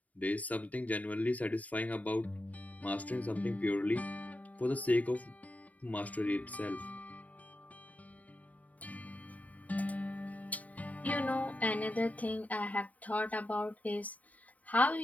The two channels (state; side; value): late; right; 0.072 ms